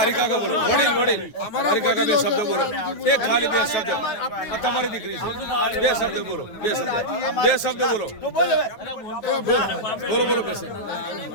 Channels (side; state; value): right; late; 9.3 ms